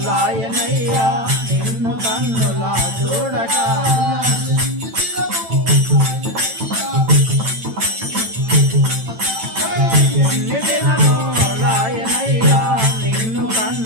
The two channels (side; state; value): left; late; 9.0 ms